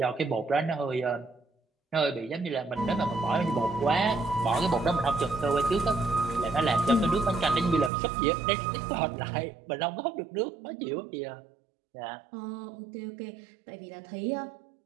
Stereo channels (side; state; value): left; drops out; at 7.9 s